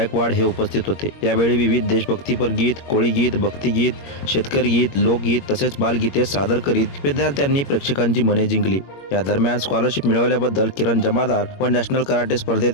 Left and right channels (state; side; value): late; right; 21 ms